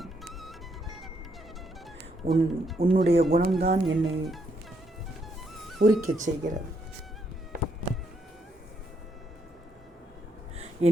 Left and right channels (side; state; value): both; normal; correlation 0.75